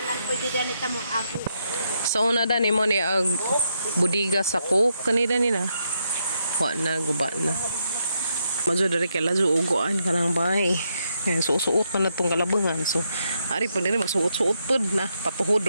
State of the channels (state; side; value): inverted; both; correlation -0.79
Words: So una da nimo ni ag budiga sa cook kanina nina. Wa na guba na. Majo dari kay lazo ugoan kanang bahay. Yan, suot na itong kalabangan. So, ari po nila magsuot-suot po na. Patuhod